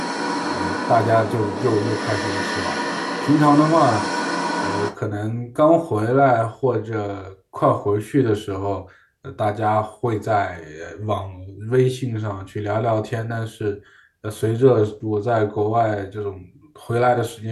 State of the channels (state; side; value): identical; both; correlation 1.00